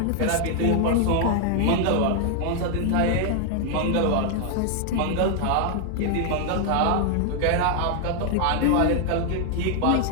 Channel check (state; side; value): different; both; correlation 0.00